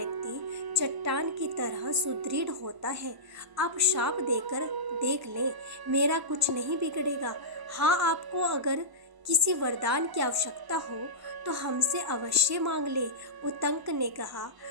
चट्टान की तरह सुदृढ़ होता है। आप शाप देकर देख लें, मेरा कुछ नहीं बिगड़ेगा। हाँ, आपको अगर किसी वरदान की आवश्यकता हो तो हमसे अवश्य मांग ले। उतंक ने कहा,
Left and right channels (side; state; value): left; late; 1.0 ms